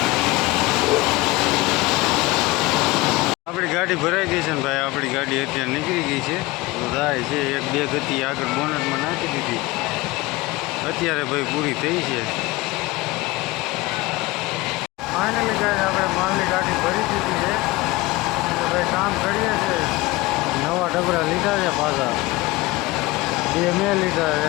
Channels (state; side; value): quieter; right; 20.9 dB